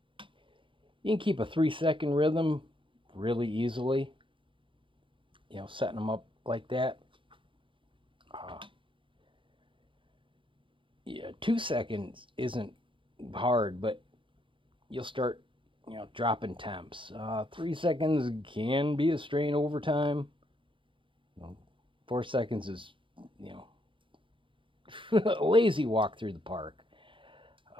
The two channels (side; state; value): left; late; 0.25 ms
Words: can keep a 3-second rhythm really easily. Setting them up like that. Yeah, 2 seconds isn't hard, but you'll start, dropping temps. 3 seconds can be a strain over time. 4 seconds is, a lazy walk through the park.